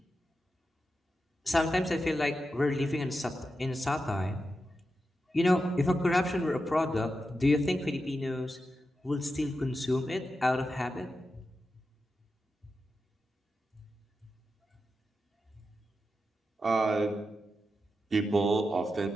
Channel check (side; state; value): both; normal; correlation 0.89